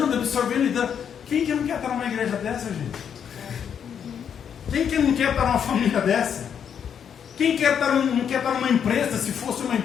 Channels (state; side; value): quieter; right; 8.0 dB